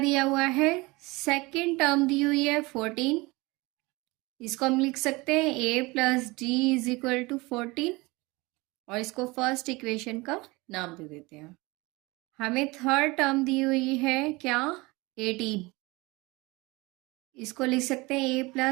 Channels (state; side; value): quieter; left; 23.4 dB